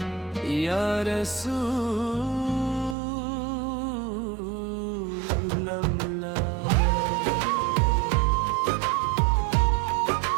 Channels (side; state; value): left; drops out; at 3.0 s